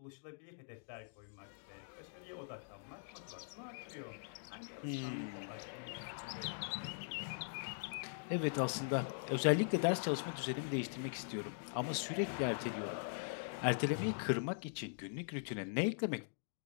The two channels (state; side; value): silent; right; digital silence